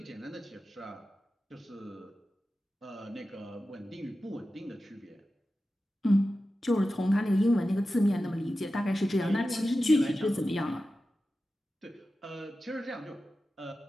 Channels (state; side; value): normal; both; correlation 0.93